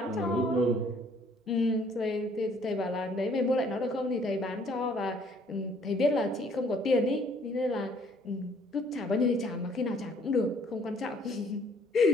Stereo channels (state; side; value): normal; both; correlation 0.61